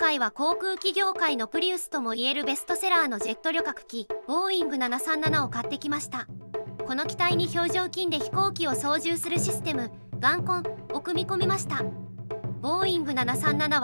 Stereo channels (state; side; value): inverted; both; correlation -1.00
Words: は航空機業界のプリウスともいえるベストセラーのジェット旅客機ボーイング737を買ってきました。この機体に表情筋で飛行機を操縦するシステム眼根を組み込みました。ボーイング737